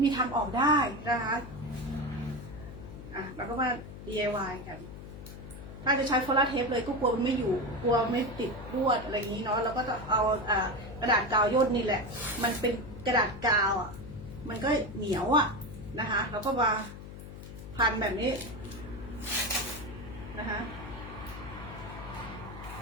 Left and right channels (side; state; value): left; noise; hum, 12 dB below the sound